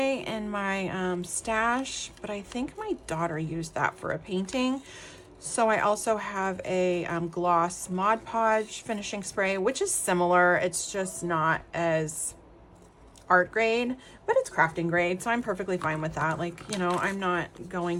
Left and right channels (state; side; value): identical; both; correlation 1.00